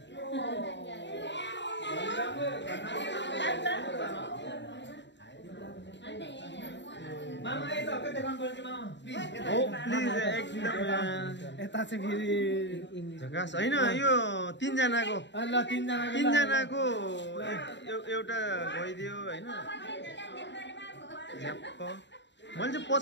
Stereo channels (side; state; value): right; late; 0.52 ms